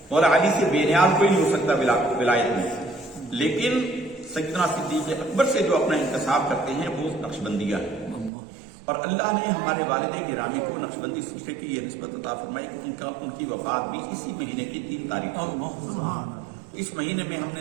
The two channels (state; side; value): drops out; left; at 8.3 s